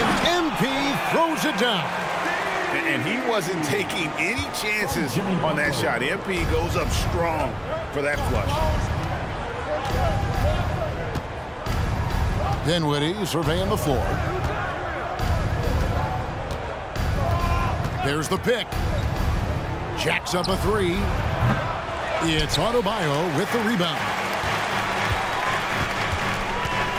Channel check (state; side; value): identical; both; correlation 1.00